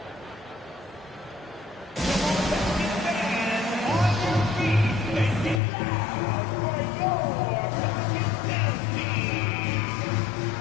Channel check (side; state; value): right; drops out; at 5.6 s